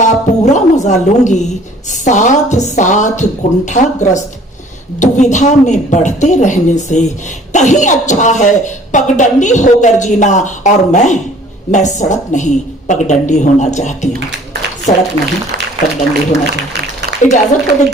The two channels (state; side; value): normal; both; correlation 0.53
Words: पूरा मजा लूंगी। साथ साथ कुंठाग्रस्त दुविधा में बढ़ते रहने से कहीं अच्छा है पगडंडी होकर जीना। और मैं सड़क नहीं पगडंडी होना चाहती हूँ, सड़क नहीं पगडंडी होना चाहती हूँ। इजाजत हो